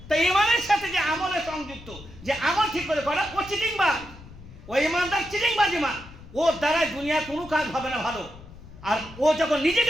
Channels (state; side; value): noise; left; rumble, 18 dB below the sound